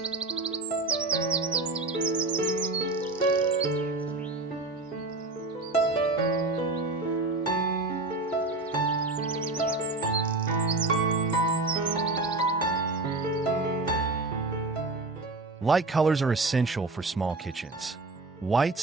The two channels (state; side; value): quieter; left; 3.1 dB